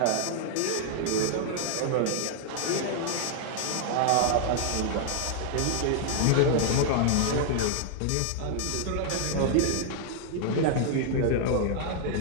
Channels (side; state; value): both; different; correlation 0.00